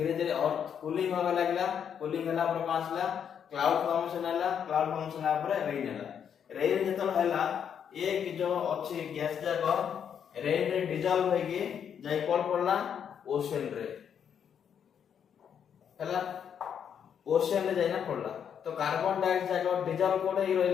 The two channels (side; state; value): right; quieter; 8.1 dB